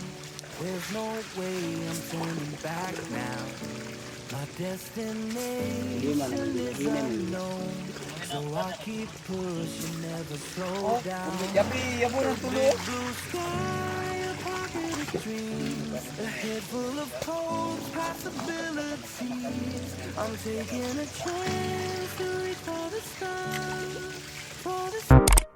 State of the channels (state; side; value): identical; both; correlation 1.00